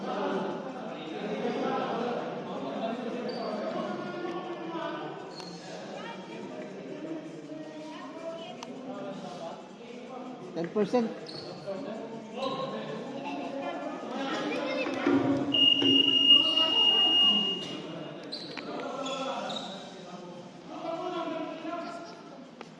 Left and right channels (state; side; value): identical; both; correlation 1.00